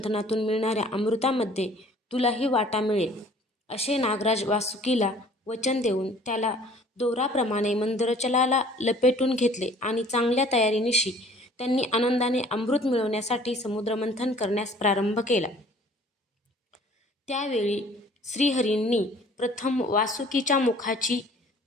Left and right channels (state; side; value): normal; both; correlation 0.53